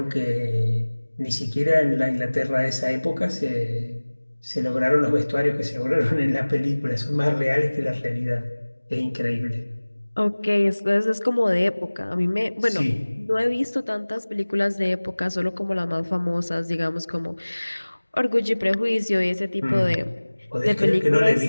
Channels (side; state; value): both; inverted; correlation -1.00